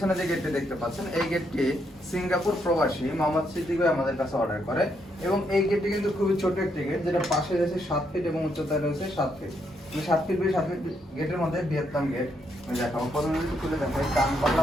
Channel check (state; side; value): normal; both; correlation 0.77